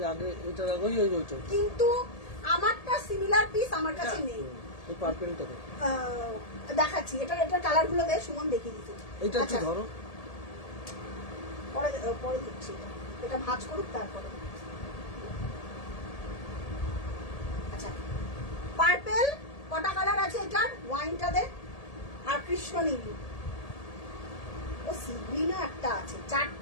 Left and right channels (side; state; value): right; late; 1.8 ms